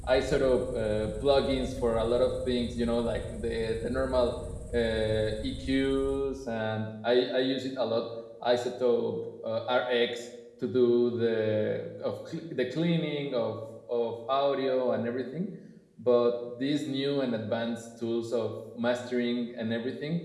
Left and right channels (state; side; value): identical; both; correlation 1.00